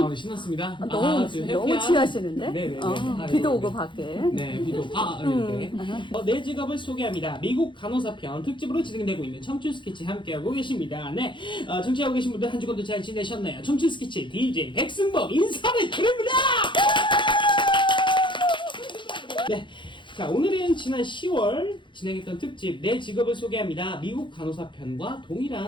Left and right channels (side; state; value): right; late; 0.23 ms